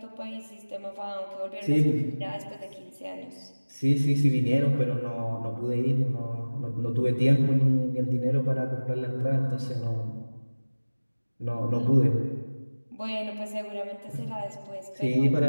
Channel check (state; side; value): inverted; both; correlation -1.00